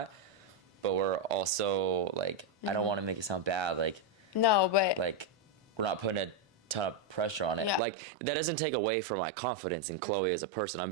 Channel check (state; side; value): drops out; left; at 7.8 s